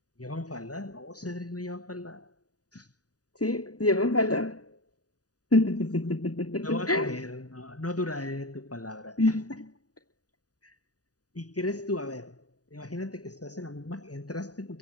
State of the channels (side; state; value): right; late; 0.68 ms